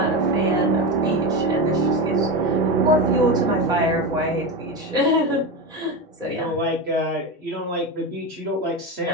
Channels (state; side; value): normal; both; correlation 0.18